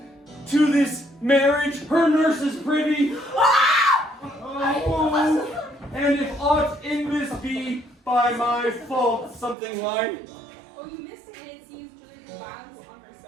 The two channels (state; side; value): drops out; left; at 9.6 s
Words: To this marriage her nurse is privy. Oh, and if aught in this be by my fault, something like. Oh, you missed it, and it seems Juliet did violence on herself.